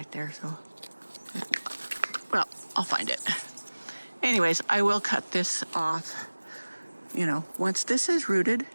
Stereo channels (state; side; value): inverted; both; correlation -1.00